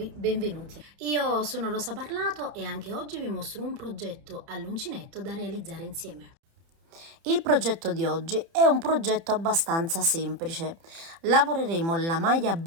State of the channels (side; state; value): left; late; 30 ms